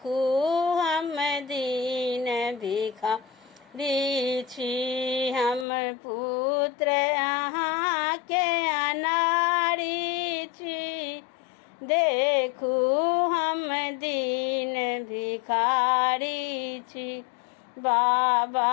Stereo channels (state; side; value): drops out; right; at 5.7 s